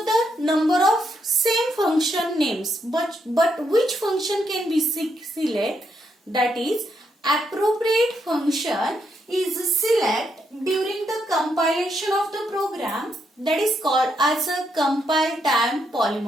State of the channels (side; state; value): both; normal; correlation 0.78